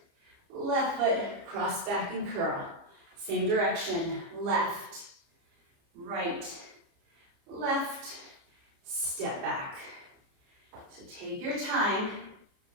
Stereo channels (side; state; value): left; late; 29 ms